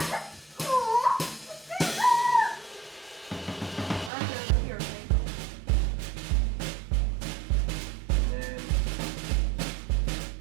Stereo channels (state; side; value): drops out; left; at 4.1 s